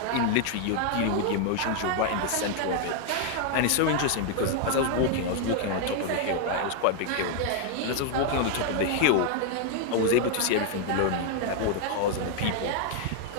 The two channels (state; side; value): different; both; correlation 0.00